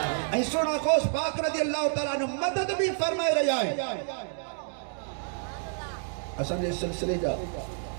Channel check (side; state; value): left; silent; digital silence